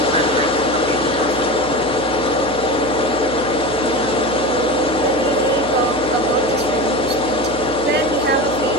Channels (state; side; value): noise; right; hum, 14 dB below the sound